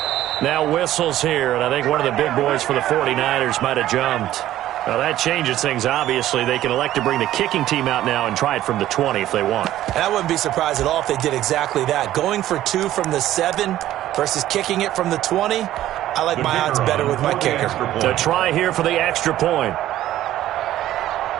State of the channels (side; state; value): left; quieter; 13.5 dB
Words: Now whistles here, and I think one of the big boys for the 49ers might have jumped. Well, that changes things, obviously. They can elect to bring the kicking team out now and try it from the 20 if they want. And I wouldn't be surprised at all if they did exactly that. Going for 2 from the 7 versus kicking it from the 20, I like my odds better with my kicker. To try here for the extra point.